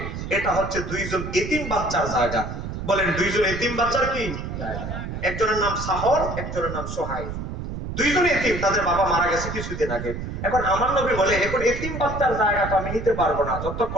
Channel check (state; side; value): noise; right; rumble, 6 dB below the sound